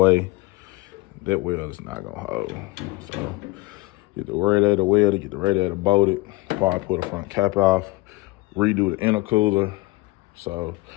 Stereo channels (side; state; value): right; quieter; 21.8 dB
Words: That weld is not gonna hold. So get the radiator welded, get the radiator bolted, probably pull the front cap off, redo the intercooler. So